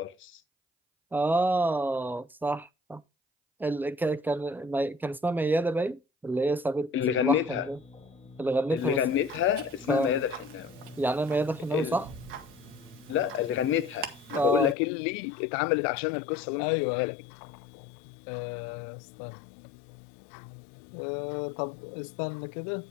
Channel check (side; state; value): right; drops out; at 14.8 s